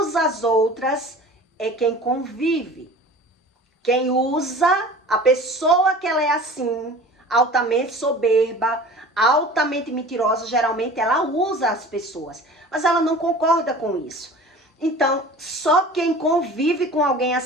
as outras é quem convive. Quem usa, a pessoa que ela é assim, altamente soberba, altamente mentirosa, geralmente ela usa as pessoas, mas ela não concorda com isso. Então, só quem convive com alguém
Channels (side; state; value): both; normal; correlation 0.41